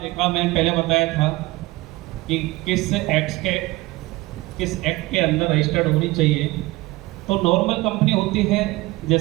देखा, मैंने पहले बताया था कि किस एक्ट के अंदर रजिस्टर्ड होनी चाहिए। तो नॉर्मल कंपनी होती है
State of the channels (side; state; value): left; quieter; 20.4 dB